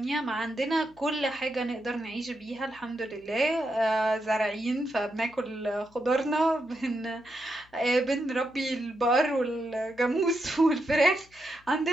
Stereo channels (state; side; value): noise; left; hum, 29 dB below the sound